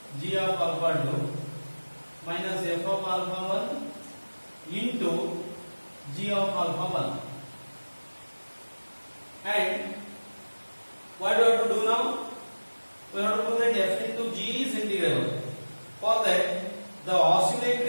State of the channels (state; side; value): inverted; both; correlation -1.00